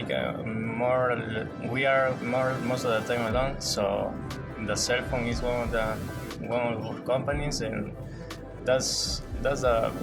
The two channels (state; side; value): identical; both; correlation 1.00